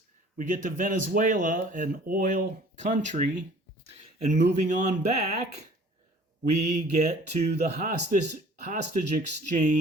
We get to Venezuela, an oil country, and moving on back, we get to the hostage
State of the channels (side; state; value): both; normal; correlation 0.51